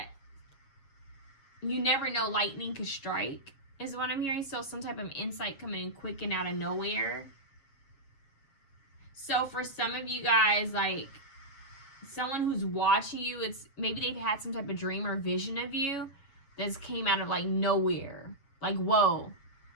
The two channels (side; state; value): right; late; 7.3 ms